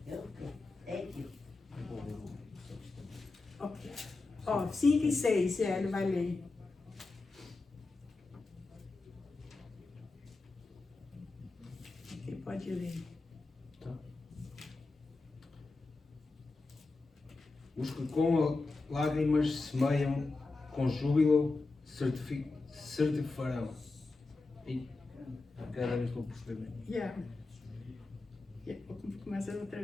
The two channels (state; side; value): quieter; right; 3.5 dB